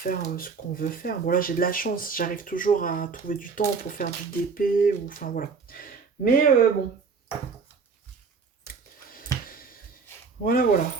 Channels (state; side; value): quieter; left; 5.2 dB